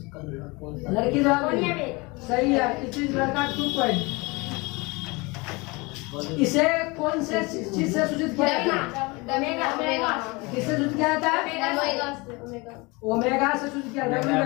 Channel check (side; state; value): right; quieter; 25.8 dB